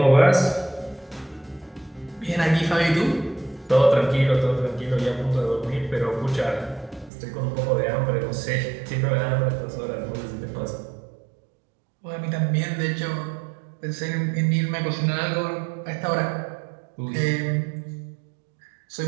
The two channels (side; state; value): left; drops out; at 7.1 s